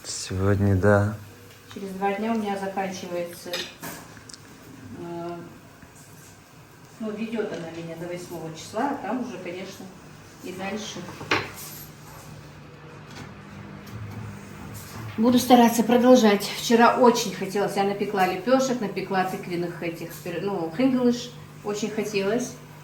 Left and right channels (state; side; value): identical; both; correlation 1.00